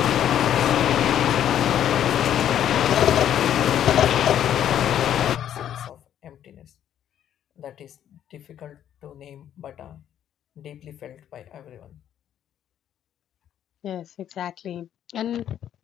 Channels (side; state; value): right; quieter; 10.4 dB